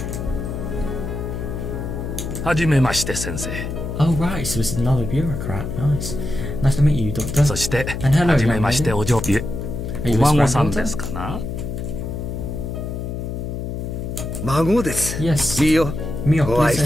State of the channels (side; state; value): left; noise; hum, 5 dB below the sound